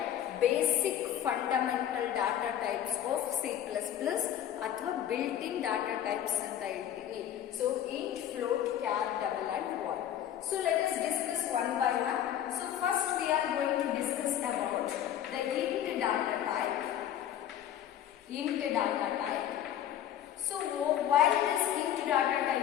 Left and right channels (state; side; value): quieter; right; 10.8 dB